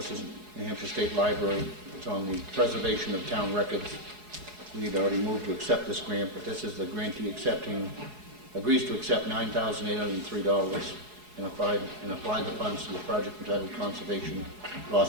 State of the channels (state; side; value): late; left; 4.8 ms